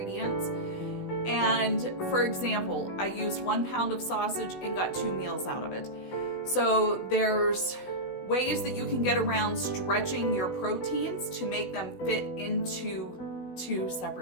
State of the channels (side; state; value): right; late; 16 ms